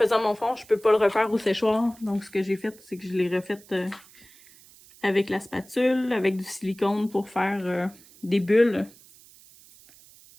mon fond, je peux pas le refaire au séchoir. Donc, ce que j'ai fait, c'est que je l'ai refait avec la spatule, avec du silicone pour faire des bulles.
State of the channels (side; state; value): right; noise; hiss, 24 dB below the sound